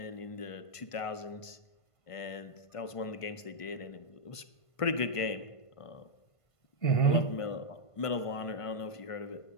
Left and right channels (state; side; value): late; right; 1.5 ms